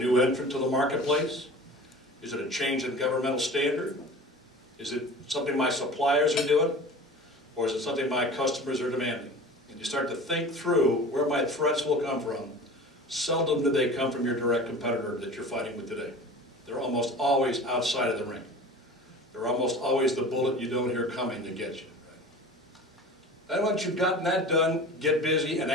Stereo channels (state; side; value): normal; both; correlation 0.38